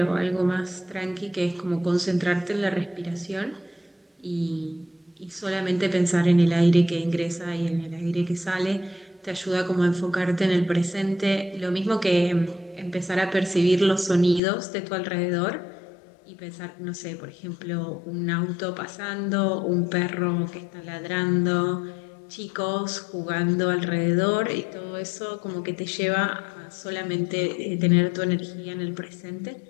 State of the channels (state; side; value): drops out; right; at 14.4 s